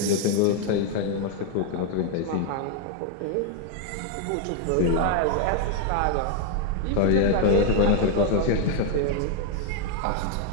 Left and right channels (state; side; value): different; both; correlation 0.01